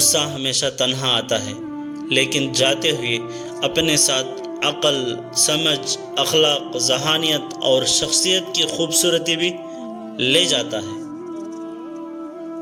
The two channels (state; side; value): identical; both; correlation 1.00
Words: ہمیشہ تنہا آتا ہے، لیکن جاتے ہوئے اپنے ساتھ عقل، سمجھ، اخلاق، ذہانیت اور شخصیت کی خوبصورتی بھی لے جاتا ہے۔